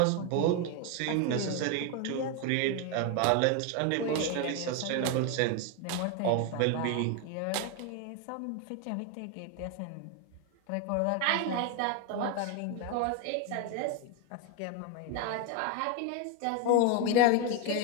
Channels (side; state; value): both; different; correlation 0.01